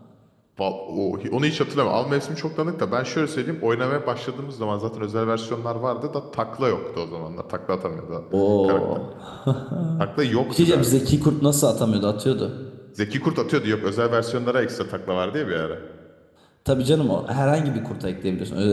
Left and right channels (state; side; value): identical; both; correlation 1.00